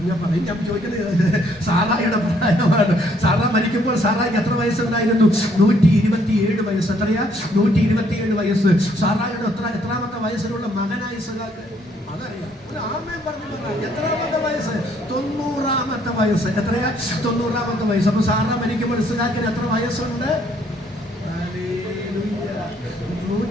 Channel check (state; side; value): normal; both; correlation 0.67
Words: ഞാൻ ചോദിക്കുന്നത് സാറായിയുടെ പ്രായമാണ്. സാറാ മരിക്കുമ്പോൾ സാറായിക്ക് എത്ര വയസ്സുണ്ടായിരുന്നു? 127 വയസ്സ്. എത്രയാ? 127 വയസ്സ്. സാറായിയുടെ എത്രാമത്തെ വയസ്സിലുള്ള മകനായി ഇസഹാക്ക്? അതറിയാം. ഒരു ആമേൻ പറഞ്ഞു. എത്രാമത്തെ വയസ്സ്? 90-ാമത്തെ വയസ്സ്. എത്രയാ? 90-ാമത്തെ വയസ്സ്. അപ്പൊ സാറാ മരിക്കുമ്പോൾ ഇസഹാക്കിന് എത്ര വയസ്സുണ്ട്?